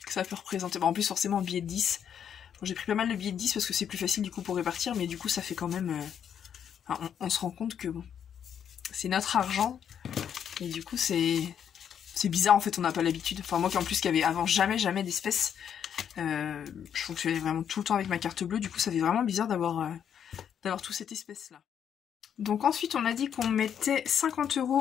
ça peut représenter. Bon, en plus forcément un billet de 10. Bon, j'ai pris pas mal de billets de 10 parce que c'est plus facile du coup pour répartir, mais du coup ça fait quand même... on se rend compte que bon, c'est notre argent et du coup c'est bizarre en fait, on n'a pas l'habitude. Enfin moi qui en plus qui avait avant jamais d'espèces, je fonctionnais vraiment tout le temps avec ma carte bleue, du coup ça fait vraiment bizarre d'avoir toute cette espèce là. Donc ensuite on a dit qu'on mettait 50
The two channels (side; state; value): right; quieter; 8.6 dB